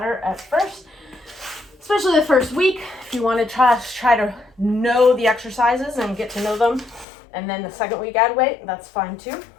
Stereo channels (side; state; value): right; drops out; at 7.1 s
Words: at first, especially the first week. If you want to try to know the exercises and get to know them, and then the second week add weight, that's fine too.